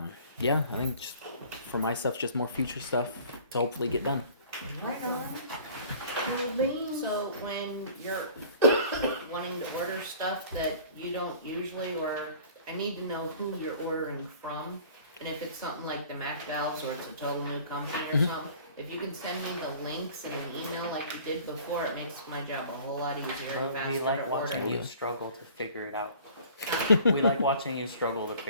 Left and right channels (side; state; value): both; inverted; correlation -0.48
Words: Yeah, I think just for my stuff, just more future stuff to hopefully get done. So when you're wanting to order stuff that you don't usually, or I need to know who you're ordering from, and if it's something like the Mac valves or it's a total new company or something, if you can send me the links in an email like you did before, it makes my job a whole lot easier and faster We like to watching order. you struggle to figure it out. We like watching you struggle to